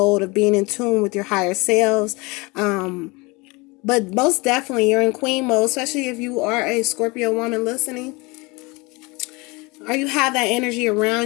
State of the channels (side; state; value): right; quieter; 25.8 dB